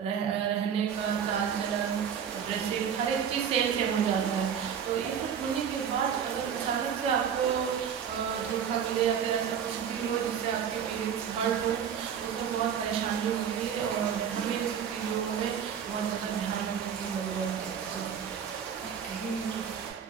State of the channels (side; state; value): left; quieter; 7.9 dB